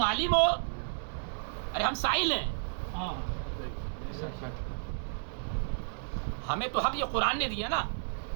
عالم ہو, ارے ہم سائل ہیں. ہمیں تو حق یہ قرآن نے دیا نا,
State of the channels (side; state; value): left; silent; digital silence